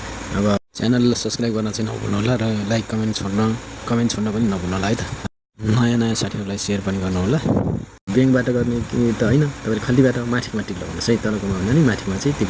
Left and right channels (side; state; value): both; identical; correlation 1.00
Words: अब च्यानललाई सब्सक्राइब गर्न चाहिँ नभुल्नु होला र लाइक कमेन्ट छोड्न पनि नभुल्नु होला है त। नयाँ साथीहरूलाई सेयर पनि गर्नु होला। ब्याङ्कबाट गर्ने कि त होइन, तपाईँले खल्तीबाट माथिमा टिक लगाउनुहोस् है। तलकोमा भन्दा नि माथिमा चाहिँ टिक